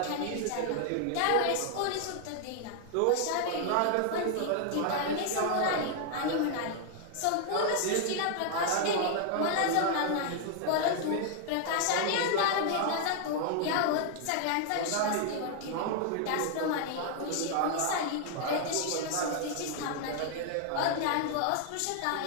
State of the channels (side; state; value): both; different; correlation 0.00